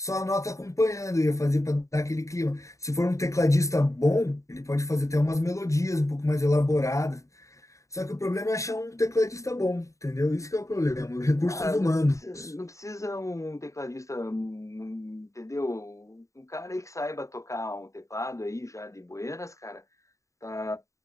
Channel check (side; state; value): right; late; 0.15 ms